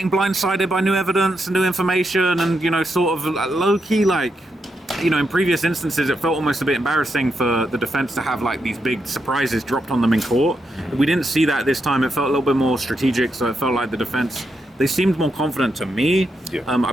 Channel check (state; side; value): normal; both; correlation 0.83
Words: blindsided by new evidence and new information and, sort of low-key, like, in previous instances, it felt almost a bit embarrassing for the defense to have like these big surprises dropped on them in court. We didn't see that this time. It felt a little bit more strategic, so it felt like the defense, they seemed more confident to me. Yeah.